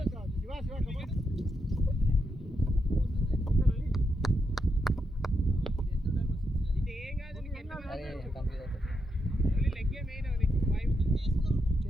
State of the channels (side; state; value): both; normal; correlation 0.83